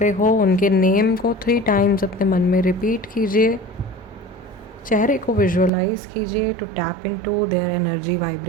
हो, उनके नेम को 3 टाइम्स अपने मन में रिपीट कीजिए, चेहरे को विजुअलाइज कीजिए to tap into their energy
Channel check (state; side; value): drops out; left; at 5.7 s